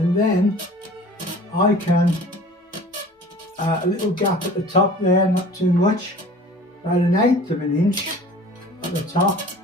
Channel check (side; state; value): both; normal; correlation 0.45